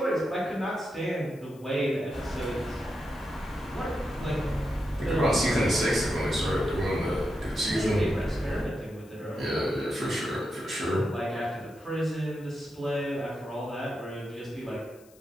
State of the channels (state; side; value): noise; left; hiss, 27 dB below the sound